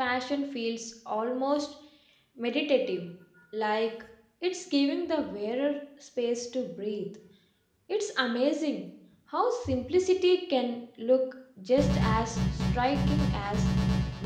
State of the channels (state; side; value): identical; both; correlation 1.00